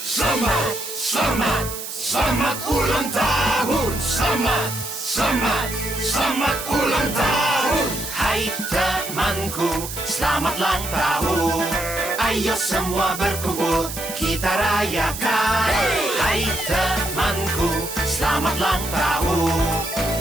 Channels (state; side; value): noise; right; hiss, 8 dB below the sound